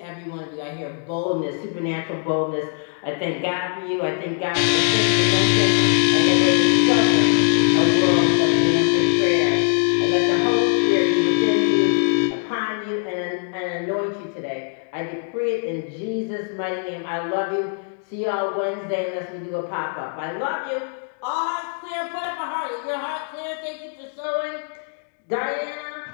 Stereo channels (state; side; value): silent; right; 61 dB below the other